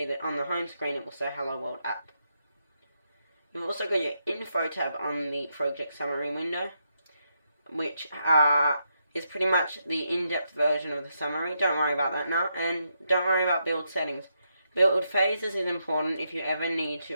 that on the home screen it will say Hello World App. You've also got your Info tab on the project summary window, which is pretty much the in-depth version of the summary. Don't worry about that now, and don't worry about build settings. Build phases is important if you ever need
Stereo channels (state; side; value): inverted; both; correlation -0.81